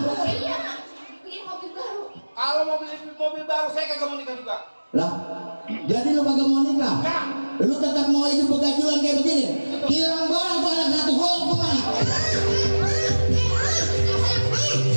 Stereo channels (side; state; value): both; inverted; correlation -1.00